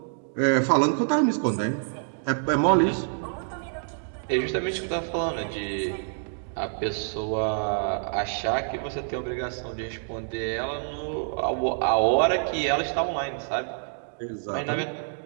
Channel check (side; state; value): left; silent; digital silence